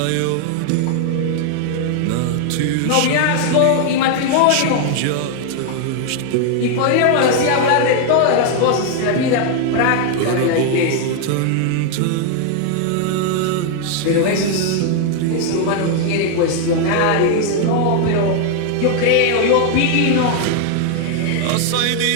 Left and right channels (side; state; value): both; different; correlation 0.00